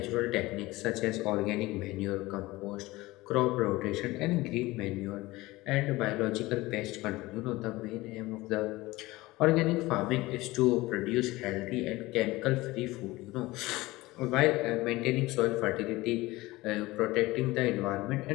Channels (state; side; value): quieter; right; 19.8 dB